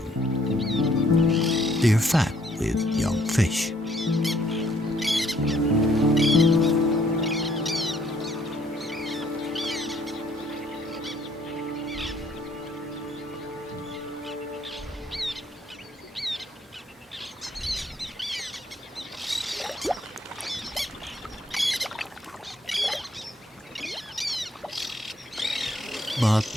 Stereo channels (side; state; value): both; normal; correlation 0.65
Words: They are fed with young fish. But